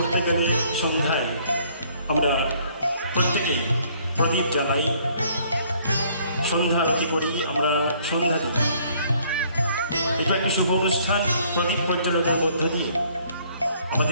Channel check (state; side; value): inverted; both; correlation -0.62